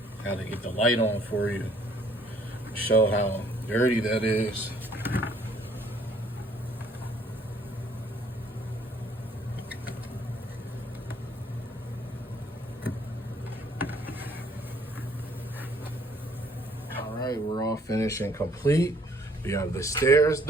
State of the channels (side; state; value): both; normal; correlation 0.62